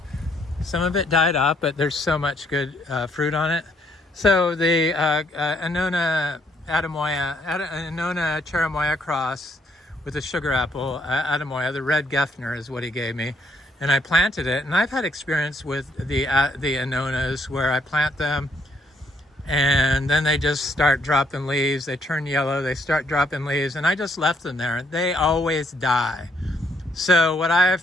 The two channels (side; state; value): both; normal; correlation 0.70